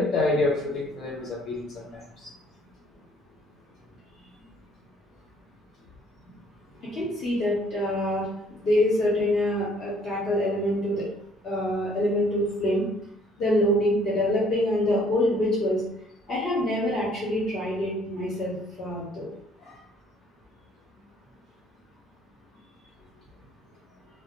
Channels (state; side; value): normal; both; correlation 0.61